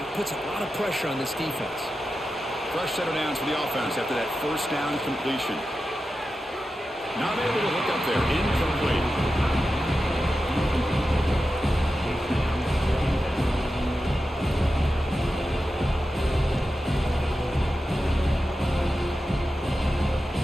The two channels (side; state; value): both; normal; correlation 0.91